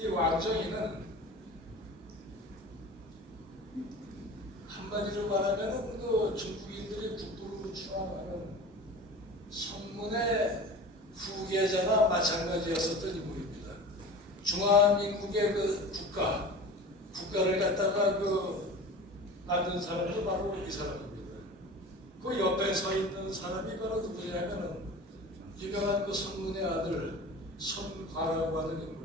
왕정이는 한마디로 말하면은 중국인들이 국부로 추앙하는 성문의 후계자나 마찬가지였었던 인물입니다. 중화민국의 국가를 갖다가 만든 사람도 바로 이 사람입니다. 그 옆에 서 있는 사람이 바로 누구냐면은 유명한 그 손문의 아들 손과라고 하는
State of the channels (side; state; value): both; normal; correlation 0.36